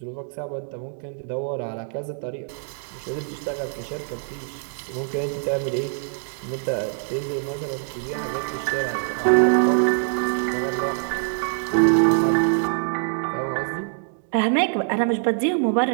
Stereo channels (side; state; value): left; silent; 62 dB below the other